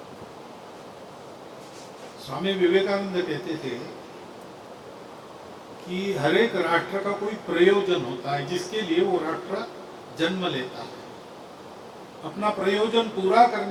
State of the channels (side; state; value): both; identical; correlation 1.00